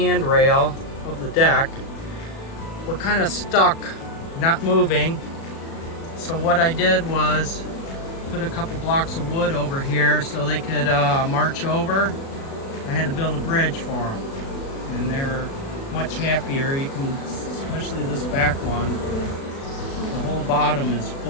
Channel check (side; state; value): right; late; 36 ms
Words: of the deck were kind of stuck, not moving. So what I did was put a couple blocks of wood over here so they could march over. I had to build a bridge for them, and they're much happier. You can, especially this back one, the whole bottom is